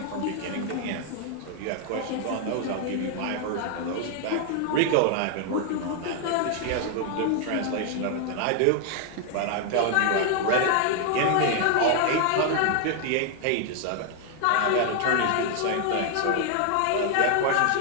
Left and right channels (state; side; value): different; both; correlation 0.00